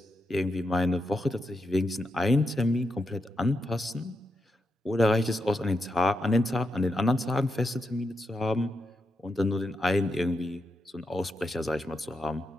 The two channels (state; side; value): normal; both; correlation 0.85